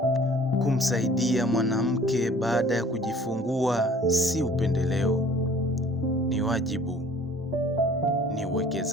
Kumsaidia mwanamke baada ya kujifungua si upendeleo, ni wajibu, ni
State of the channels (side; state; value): both; normal; correlation 0.51